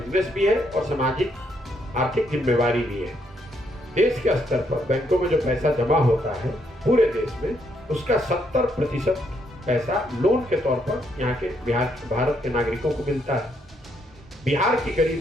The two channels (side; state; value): both; normal; correlation 0.74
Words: भी है और सामाजिक आर्थिक जिम्मेवारी भी है। देश के स्तर पर बैंकों में जो पैसा जमा होता है पूरे देश में, उसका 70% पैसा लोन के तौर पर यहाँ के भारत के नागरिकों को मिलता है। बिहार की गरीब